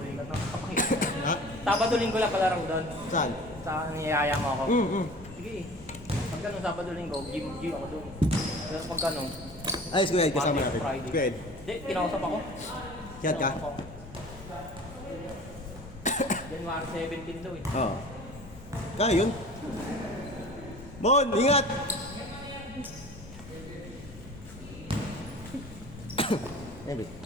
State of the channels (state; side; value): noise; left; rumble, 17 dB below the sound